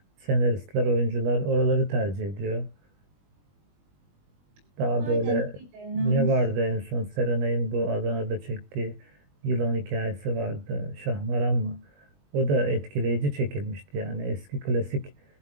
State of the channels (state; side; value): late; left; 21 ms